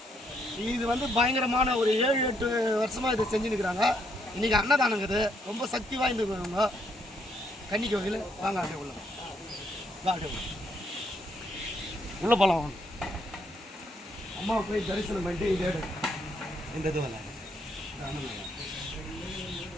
இது வந்து பயங்கரமான ஒரு 7-8 வருஷமாக இதை செஞ்சுருக்கிறாங்க. இன்றைக்கி அன்னதானங்குது, ரொம்ப சக்தி வாய்ந்தவங்க கன்னி கோவில். வாங்க அப்படியே உள்ள அப்படியே உள்ள போகலாம். அம்மாவை போய் தரிசனம் பண்ணிட்டு இந்த இது வரல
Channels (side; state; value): both; normal; correlation 0.73